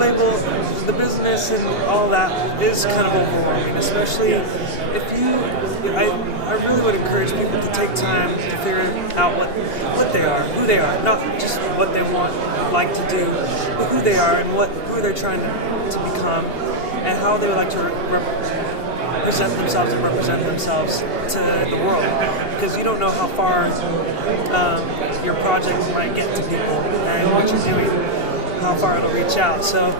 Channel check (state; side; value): late; right; 2.8 ms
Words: the business, and all that is kind of overwhelming, especially if you. I really would encourage people to take time to figure out what they are, who they are, not just what they would like to do, but who they are and who they're trying to become, and how they would like to present themselves and represent themselves to the world, because you don't know how far your project might get to people and what you're doing, how far it'll reach out. So